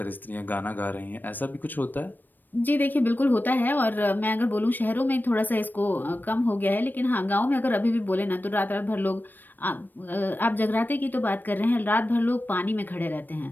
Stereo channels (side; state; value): right; late; 0.090 ms